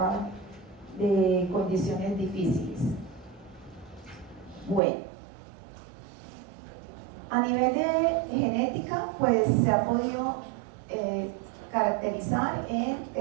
de condiciones difíciles. Bueno, a nivel de genética, pues se ha podido caracterizar en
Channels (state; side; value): drops out; left; at 4.8 s